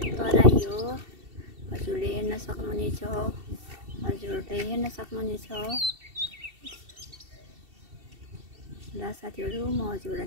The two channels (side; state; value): left; late; 2.7 ms